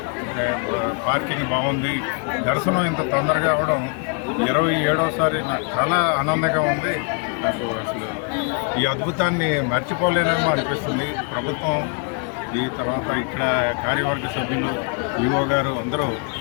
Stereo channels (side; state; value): right; quieter; 36.8 dB